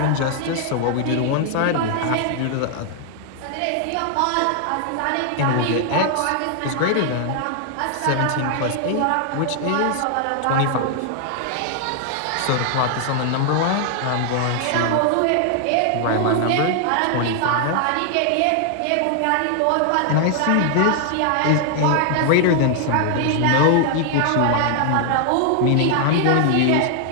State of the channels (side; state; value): both; different; correlation 0.00